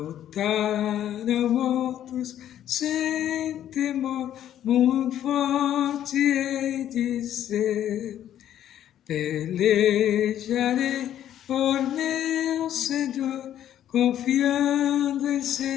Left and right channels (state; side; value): quieter; right; 11.1 dB